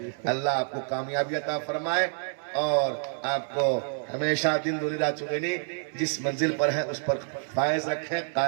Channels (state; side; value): silent; left; 59 dB below the other